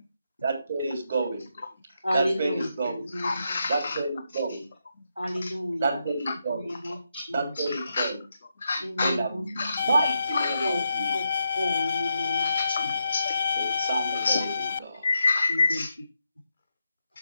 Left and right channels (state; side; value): inverted; both; correlation -0.83